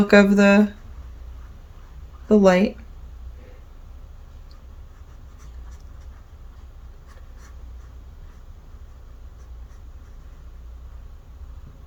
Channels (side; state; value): both; identical; correlation 1.00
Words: of the light.